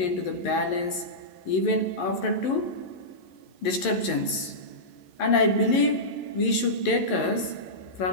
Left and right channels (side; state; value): right; late; 11 ms